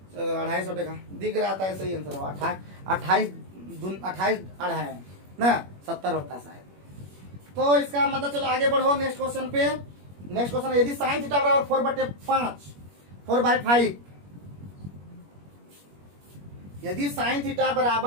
250 टका दिख रहा था। सही आंसर हुआ 28 28 ना 70 होता शायद। तो इसका मतलब चलो आगे बढ़ो नेक्स्ट क्वेश्चन पे। नेक्स्ट क्वेश्चन, यदि साइन थीटा बराबर 4/5 4/5, यदि साइन थीटा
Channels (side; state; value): left; late; 21 ms